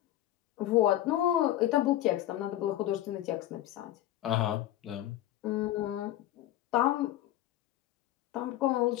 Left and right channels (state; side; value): quieter; right; 13.7 dB